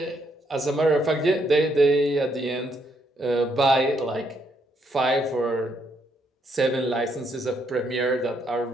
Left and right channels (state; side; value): normal; both; correlation 0.74